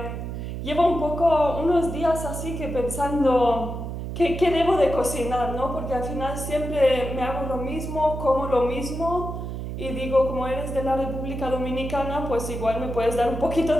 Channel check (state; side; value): noise; right; hum, 6 dB below the sound